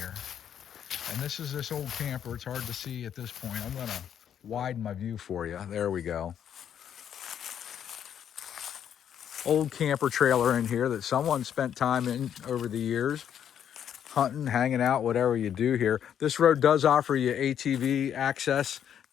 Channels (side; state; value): right; quieter; 9.2 dB